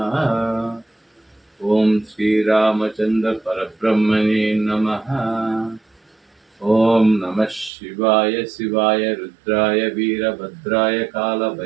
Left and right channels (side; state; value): left; drops out; at 7.7 s